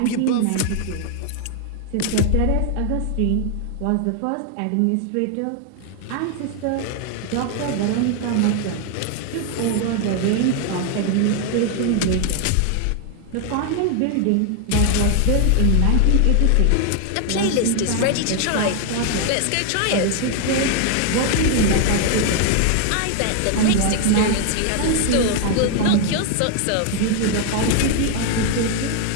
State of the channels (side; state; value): both; different; correlation 0.00